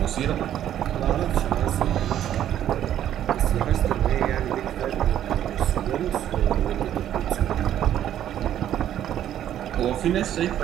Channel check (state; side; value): quieter; left; 11.1 dB